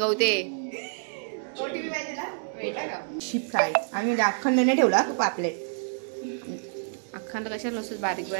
शिप फ्राय आम्ही म्हणजे अखंड नाही ठेवला पापलेट. अखंड कशाला नसतं, बारीक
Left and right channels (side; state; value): left; silent; digital silence